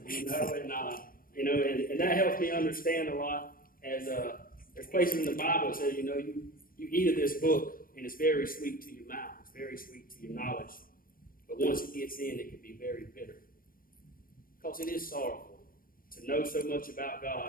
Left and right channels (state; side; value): late; right; 0.41 ms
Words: And that helps me understand a lot. As there's places in the Bible that says, you eat of this book, and it's very sweet to your mouth. It's very sweet to your knowledge. But once it gets in, it can be very bitter. Because it is sorrowful to know so much about